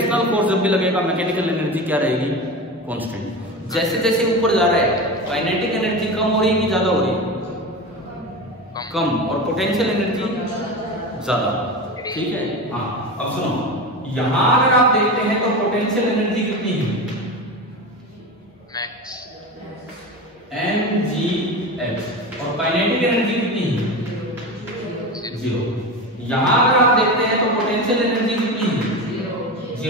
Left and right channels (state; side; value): normal; both; correlation 0.25